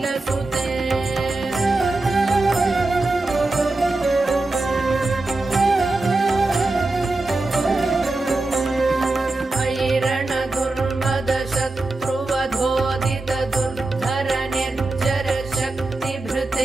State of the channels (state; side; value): quieter; left; 3.1 dB